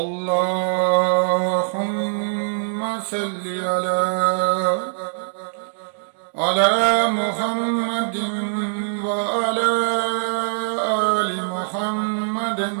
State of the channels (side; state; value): left; silent; digital silence